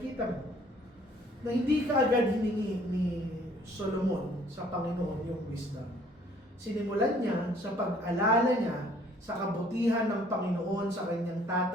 mo na hindi ka agad hiningi ni Solomon sa Panginoon yung wisdom. Sinimulan niya sa pag-alala niya sa kabutihan ng Panginoon sa kanyang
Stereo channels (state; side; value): normal; both; correlation 0.58